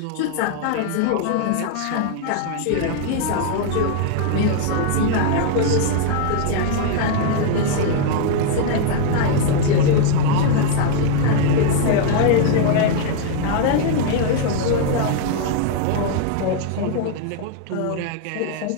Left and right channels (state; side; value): different; both; correlation 0.00